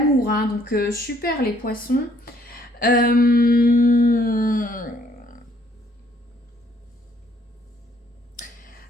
Hein. Donc, super les poissons.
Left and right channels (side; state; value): both; normal; correlation 0.64